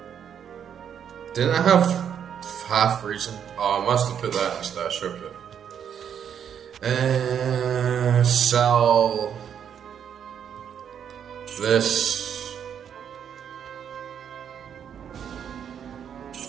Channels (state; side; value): quieter; left; 8.4 dB